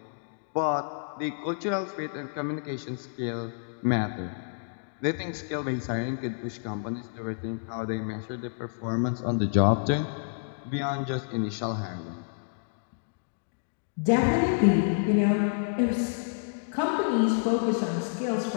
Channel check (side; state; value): right; silent; digital silence